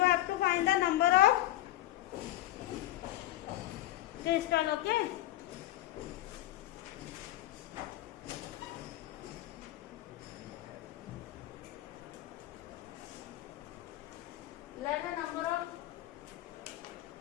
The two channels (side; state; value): right; quieter; 15.3 dB